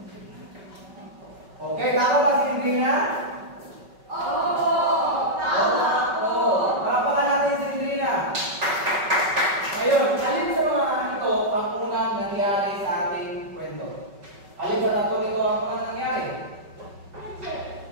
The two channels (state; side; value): late; left; 5.3 ms